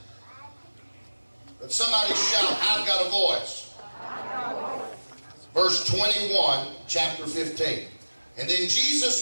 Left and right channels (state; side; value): inverted; both; correlation -1.00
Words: But somebody shout, I've got a voice. Verse 21, chapter 15. And then